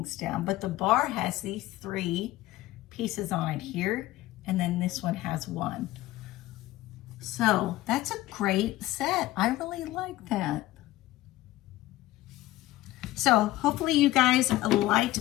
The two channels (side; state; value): right; quieter; 16.6 dB